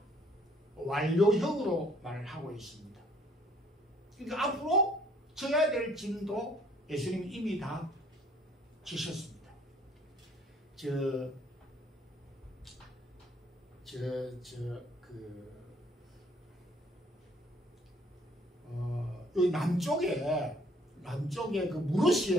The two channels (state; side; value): normal; both; correlation 0.61